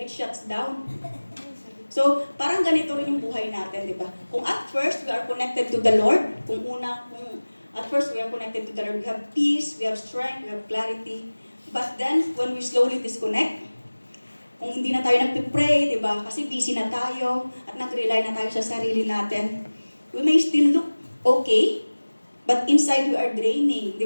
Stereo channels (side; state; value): both; inverted; correlation -1.00